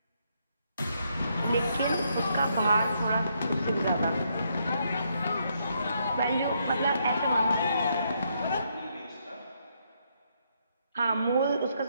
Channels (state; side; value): inverted; both; correlation -0.75